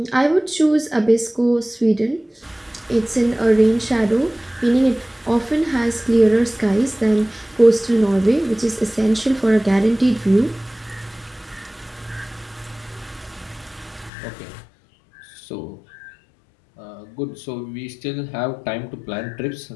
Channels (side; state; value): right; drops out; at 14.1 s